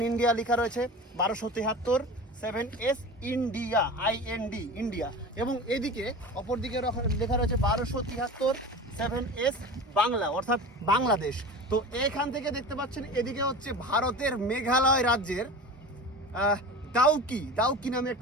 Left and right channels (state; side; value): normal; both; correlation 0.33